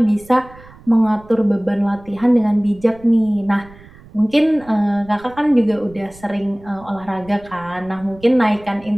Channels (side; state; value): right; noise; rumble, 22 dB below the sound